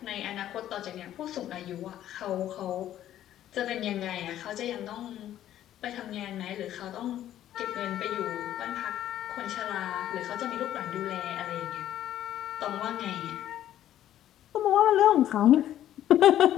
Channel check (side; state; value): right; quieter; 12.0 dB